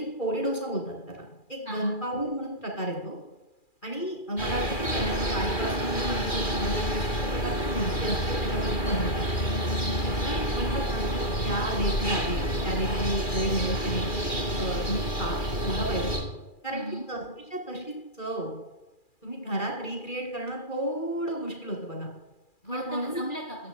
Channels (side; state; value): right; late; 2.4 ms